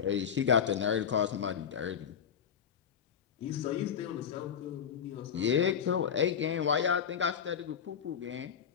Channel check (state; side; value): quieter; right; 7.8 dB